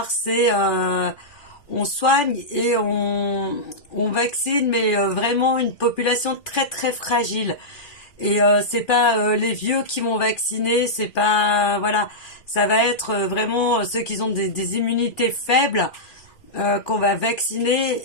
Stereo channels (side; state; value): right; late; 2.4 ms